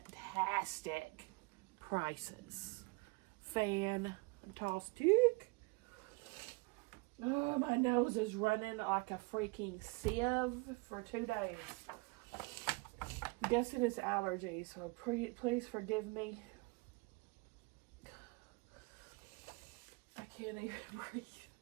prices. Fantastic. Oh, my nose is running like a freaking sieve for 2 days. Guessing it's allergies, so please forgive me. I can't even breathe.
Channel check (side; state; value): left; quieter; 27.6 dB